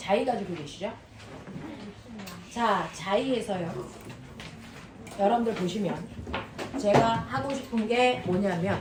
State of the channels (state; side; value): identical; both; correlation 1.00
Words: 가지고 계시죠? 자, 자이에서요. 여러분들 보시면 제가 하고 싶은 게